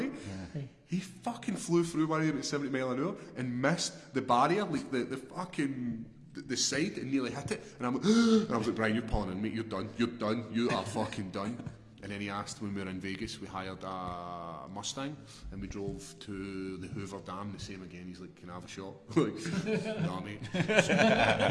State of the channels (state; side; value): identical; both; correlation 1.00